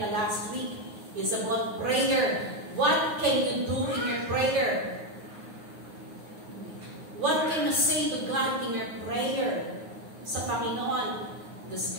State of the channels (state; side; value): late; left; 9.5 ms